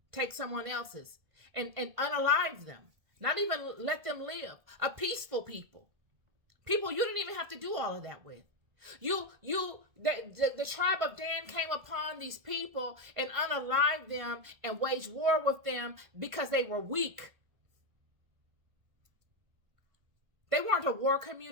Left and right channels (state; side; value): late; left; 1.5 ms